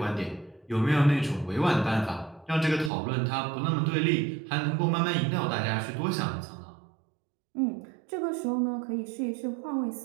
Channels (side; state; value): left; drops out; at 2.9 s